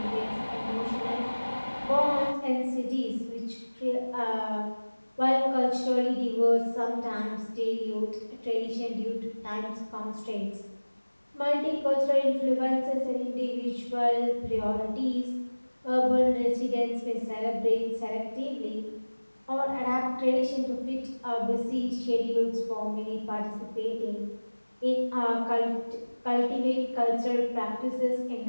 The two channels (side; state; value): both; inverted; correlation -1.00